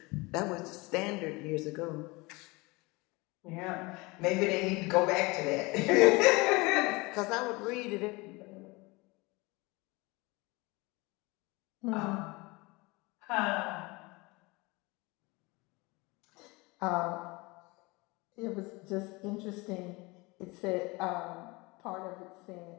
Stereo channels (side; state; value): right; quieter; 24.6 dB